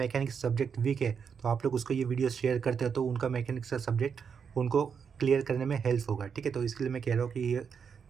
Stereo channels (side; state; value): left; quieter; 6.6 dB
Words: सब्जेक्ट वीक है तो आप लोग उसको ये वीडियो शेयर करते हो तो उनका मैकेनिक्स का सब्जेक्ट उनको क्लियर करने में हेल्प होगा। ठीक है, तो इसके लिए मैं कह रहा हूँ कि ये